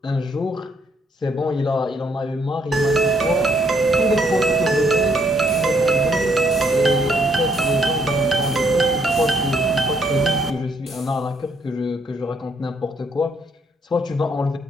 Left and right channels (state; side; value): normal; both; correlation 0.70